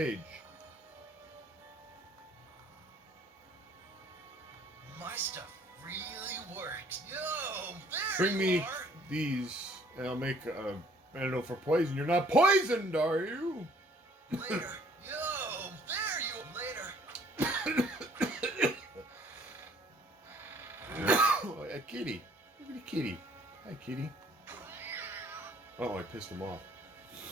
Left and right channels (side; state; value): both; normal; correlation 0.59